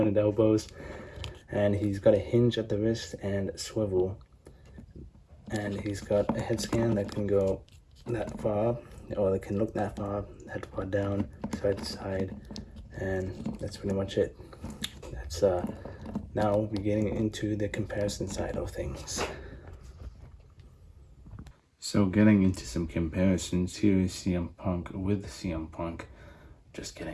elbows, and he's got a hinge at the wrist and swivel. And he's got a head scan that can go that far up, or it can look that far up, that far down, side to side. And that's pretty much it. That's now we're getting into the comparison side of things. So getting into some comparisons, here is CM Punk with CM Punk. Just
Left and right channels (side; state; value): both; identical; correlation 1.00